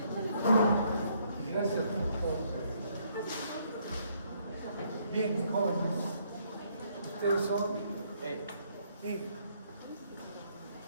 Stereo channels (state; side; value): inverted; both; correlation -0.69